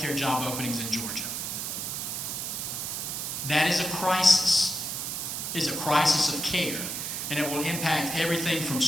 job openings in Georgia. That is a crisis. It is a crisis of care. And it will impact everything from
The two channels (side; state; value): right; noise; hiss, 3 dB below the sound